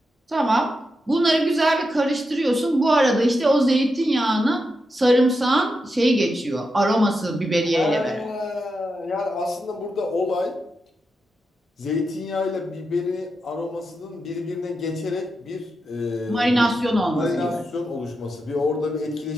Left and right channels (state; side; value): normal; both; correlation 0.87